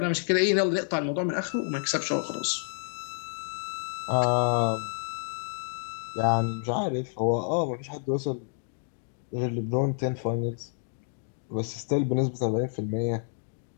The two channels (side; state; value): right; silent; digital silence